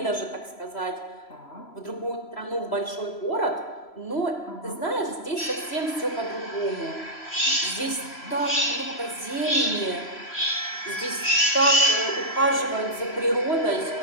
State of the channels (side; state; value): right; late; 3.0 ms